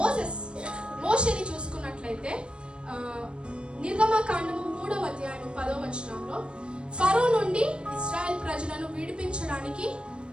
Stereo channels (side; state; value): left; late; 0.055 ms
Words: మోషేని చూసుకున్నట్లయితే నిర్గమకాండము 3వ అధ్యాయం 10వ వచనంలో ఫరో నుండి ఇశ్రాయేల్ ప్రజలను విడిపించడానికి